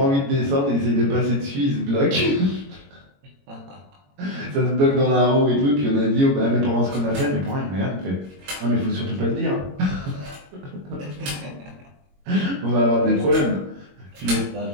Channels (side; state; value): left; late; 21 ms